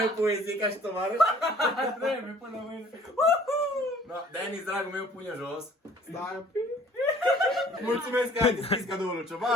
poezii ca și tovarăș? Trebuie până mâine! Da, Denis, dragul meu, pune jos. Stai un pic! Mulțumesc că ai deschis cadoul lui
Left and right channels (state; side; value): normal; both; correlation 0.54